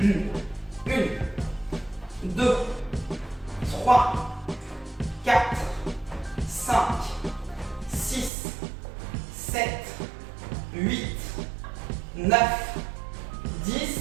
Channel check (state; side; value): drops out; left; at 8.3 s